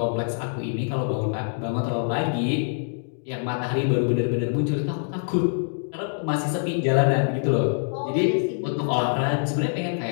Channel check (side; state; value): right; silent; digital silence